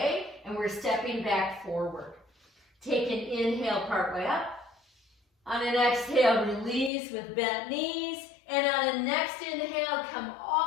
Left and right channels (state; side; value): drops out; right; at 6.9 s